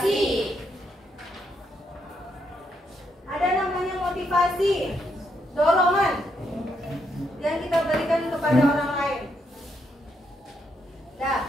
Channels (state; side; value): normal; both; correlation 0.78